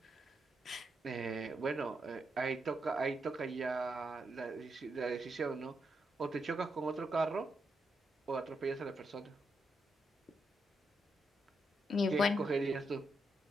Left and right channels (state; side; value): normal; both; correlation 0.82